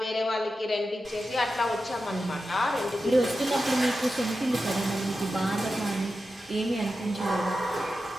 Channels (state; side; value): normal; both; correlation 0.91